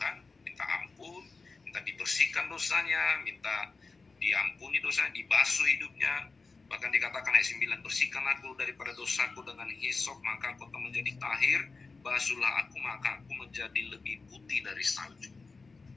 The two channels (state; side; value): quieter; right; 4.1 dB